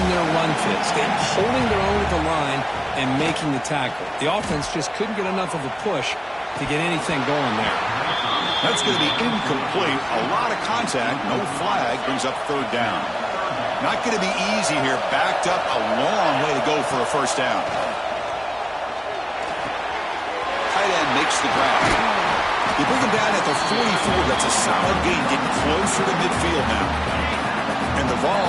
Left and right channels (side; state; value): both; identical; correlation 1.00